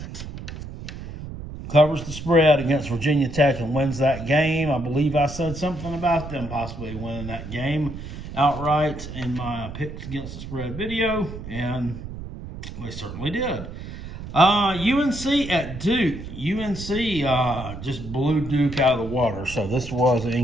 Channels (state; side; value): noise; right; rumble, 10 dB below the sound